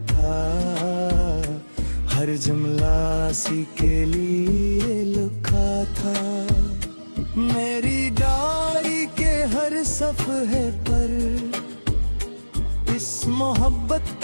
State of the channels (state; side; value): inverted; both; correlation -1.00